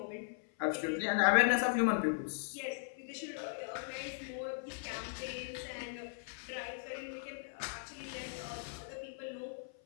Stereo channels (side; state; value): right; silent; 52 dB below the other